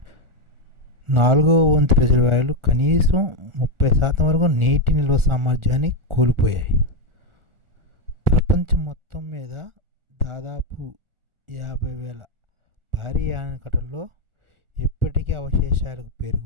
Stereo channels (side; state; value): left; late; 1.4 ms